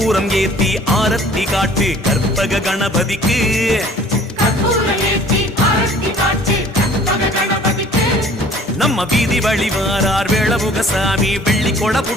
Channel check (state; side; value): normal; both; correlation 0.52